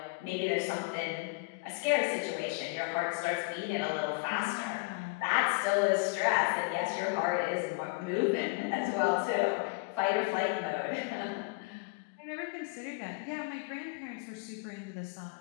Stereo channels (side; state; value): right; quieter; 28.4 dB